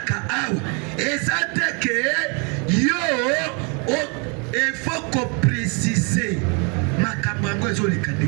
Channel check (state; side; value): quieter; left; 35.0 dB